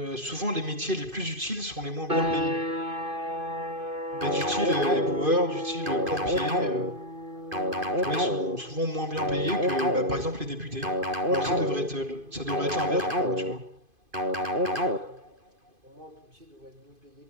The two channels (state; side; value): late; left; 2.5 ms